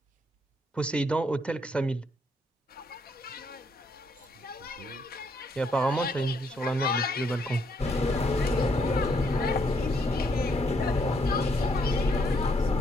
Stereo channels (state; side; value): normal; both; correlation 0.72